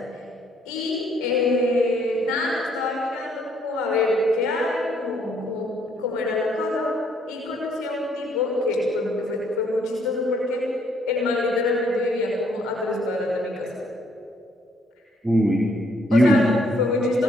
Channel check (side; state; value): both; normal; correlation 0.67